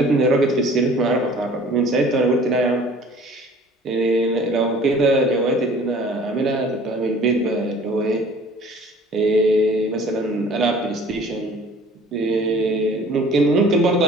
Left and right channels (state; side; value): normal; both; correlation 0.49